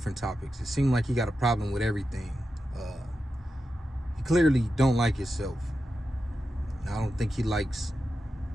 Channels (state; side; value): normal; both; correlation 0.90